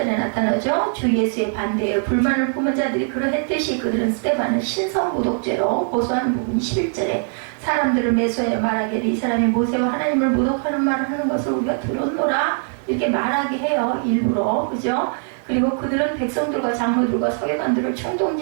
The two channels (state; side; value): silent; left; 56 dB below the other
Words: 나타나죠. 주 예수의 반대에 불만을 품은 자들이 그러했듯이 그들은 스데반을 신성모독죄로 고소하는 부분이 11절에 사람들을 매수하여 말하기를 이 사람이 모세와 하나님을 모독하는 말을 하는 것을 우리가 들었노라 이렇게 말하게 해요. 일부러. 그죠? 그리고 그들은 백성들과 장로들과 서기관들을